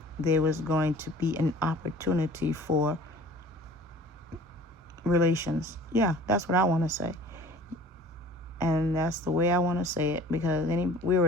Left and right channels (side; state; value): both; normal; correlation 0.47